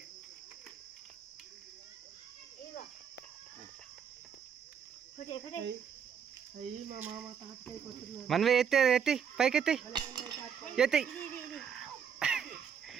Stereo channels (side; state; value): left; quieter; 7.7 dB